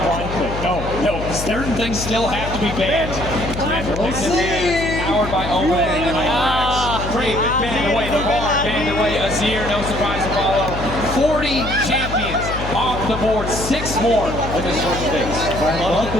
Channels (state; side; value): noise; left; hum, 7 dB below the sound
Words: click. No, certain things still have to be banned. Powered by Owen and Climax. Great, banned away the bar, banned away Azir, no surprise to follow. 40 champions off the board, 6 more in this first phase. I love